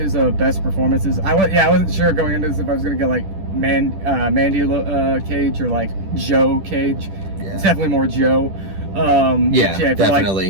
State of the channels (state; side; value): late; left; 10 ms